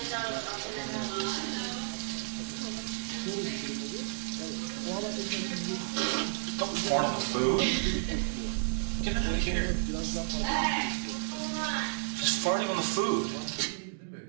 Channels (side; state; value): left; silent; digital silence